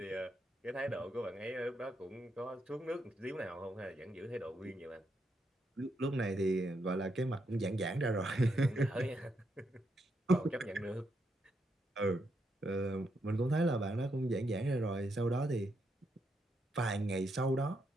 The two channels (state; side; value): normal; both; correlation 0.80